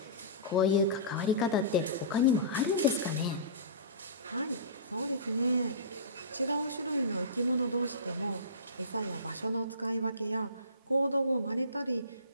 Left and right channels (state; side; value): inverted; both; correlation -0.31